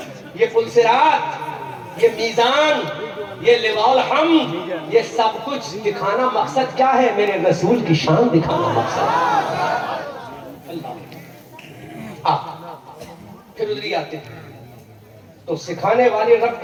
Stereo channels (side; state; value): both; identical; correlation 1.00